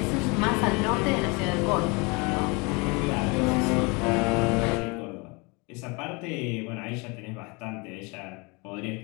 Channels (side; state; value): right; quieter; 28.8 dB